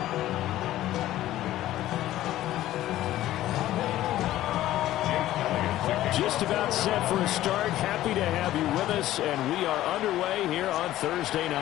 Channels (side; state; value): right; quieter; 14.3 dB